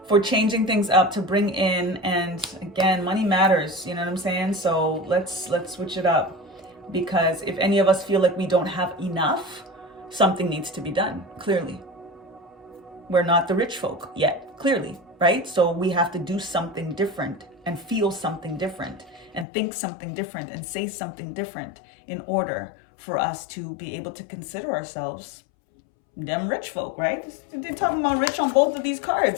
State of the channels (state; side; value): drops out; right; at 19.5 s